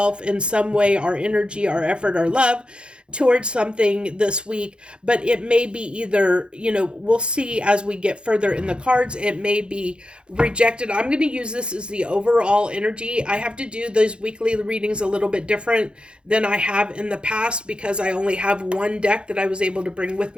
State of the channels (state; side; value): late; left; 0.054 ms